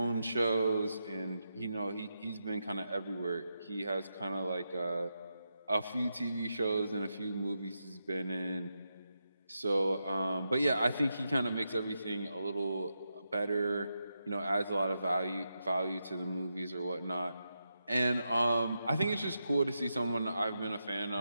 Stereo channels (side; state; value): both; inverted; correlation -0.86